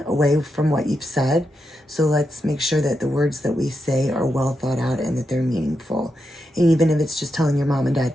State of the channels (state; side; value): normal; both; correlation 0.85